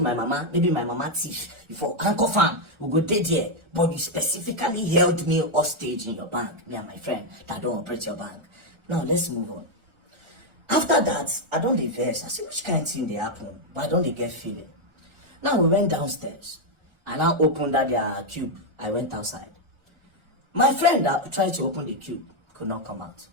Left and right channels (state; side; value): late; left; 1.4 ms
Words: my mama. Maybe my mama thief. You for handcuff am. We go dead here. But you specifically held me hostage in your bank. Me and my friend that don't operate your bank. Now, let's move on. After that, I don't diverse. I see which kind of thing they happen. But I don't get feeling. Now, we went downstairs. I now opened that their cube. I went outside. My friend that tried to open the cube could not come out.